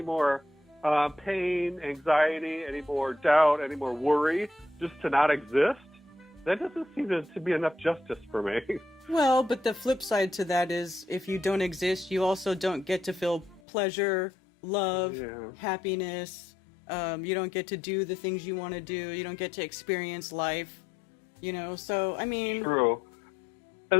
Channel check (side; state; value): right; drops out; at 13.6 s